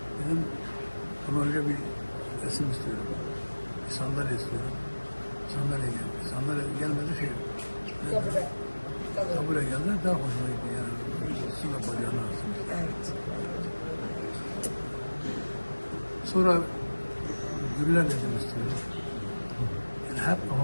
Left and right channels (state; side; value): inverted; both; correlation -1.00